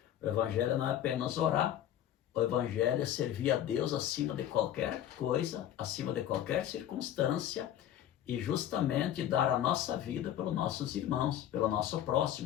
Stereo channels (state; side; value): quieter; right; 11.3 dB